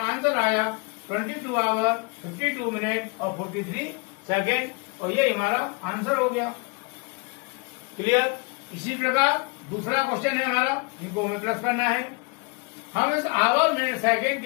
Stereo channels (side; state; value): right; quieter; 30.7 dB